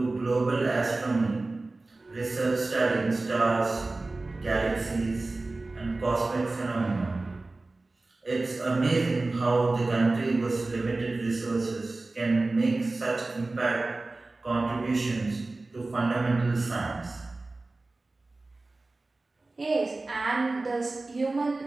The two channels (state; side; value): quieter; left; 3.2 dB